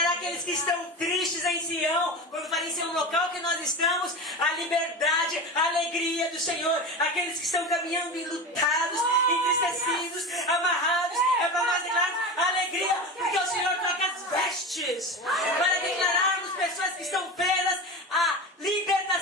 aqueles que estão tristes em Sião. Quando fala em Sião, no local que nós estamos, a liberdade, a alegria do Senhor. Aqueles que estão caminhando enlutados, entristecidos, amarrados. É para nós declararmos a alegria, porque o Senhor troca as vestes. Para declararmos pessoas que estão presas a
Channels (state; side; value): normal; both; correlation 0.26